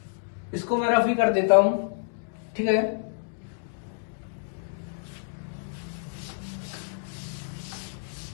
इसको मैं रफ ही कर देता हूं, ठीक है।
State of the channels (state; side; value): silent; right; digital silence